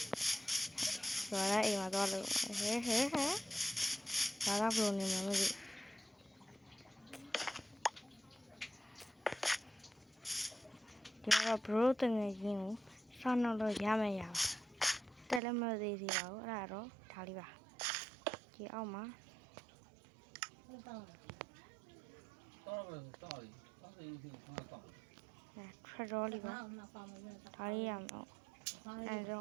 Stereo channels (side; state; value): left; drops out; at 15.4 s